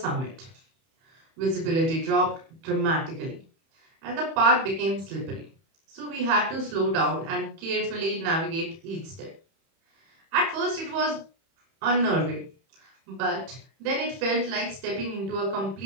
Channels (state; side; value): late; left; 31 ms